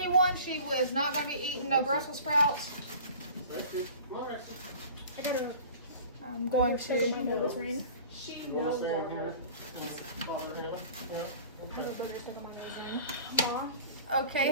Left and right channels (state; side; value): inverted; both; correlation -0.43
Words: one. She was not going to be eating no Brussels sprouts. I gotta. I'm going to. Mom, it was raining. She You want to knows. stand here? Father, Hannah? Yeah. Mom, Okay,